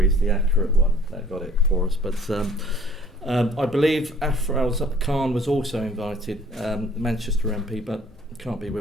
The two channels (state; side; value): normal; both; correlation 0.55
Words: is the accurate one that got it for us, but. I believe Afraz Khan was also invited, the Manchester MP, but can't be